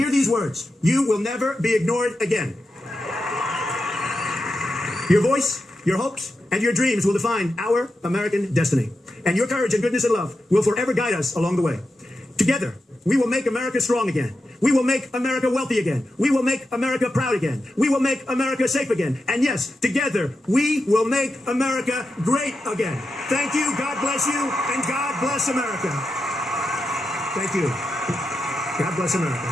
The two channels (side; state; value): both; normal; correlation 0.89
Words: these words: you will never be ignored again. Your voice, your hopes, and your dreams will define our American destiny. And your courage and goodness and love will forever guide us along the way. Together, we will make America strong again. We will make America wealthy again. We will make America proud again. We will make America safe again. And yes, together, we will make America great again. Thank you, God bless you, and God bless America. Thank you. God bless America.